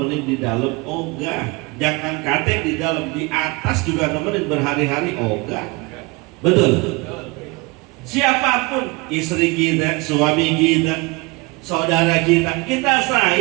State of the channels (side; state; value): left; quieter; 25.8 dB